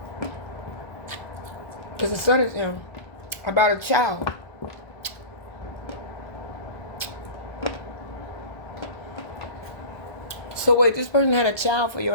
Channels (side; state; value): right; late; 1.3 ms